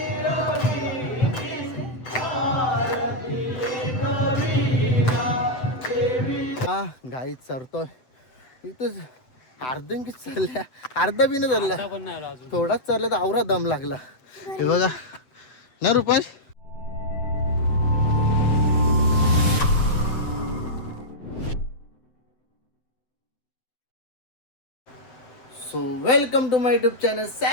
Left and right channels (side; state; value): right; late; 7.9 ms